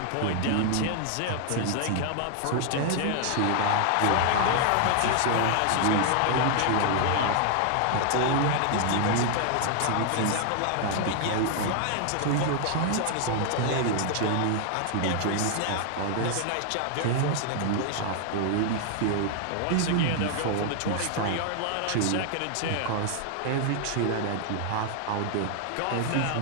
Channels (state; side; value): different; both; correlation 0.00